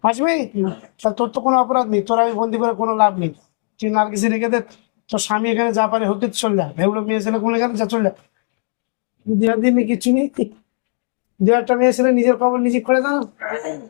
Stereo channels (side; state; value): right; silent; 55 dB below the other